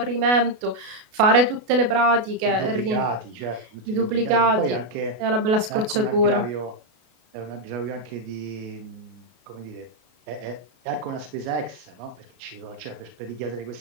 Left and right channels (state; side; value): late; left; 33 ms